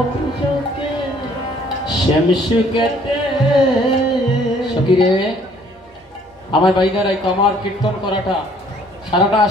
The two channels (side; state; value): both; normal; correlation 0.59